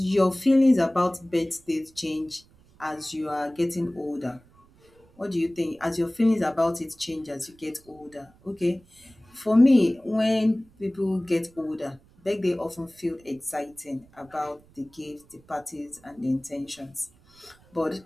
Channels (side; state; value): right; noise; rumble, 29 dB below the sound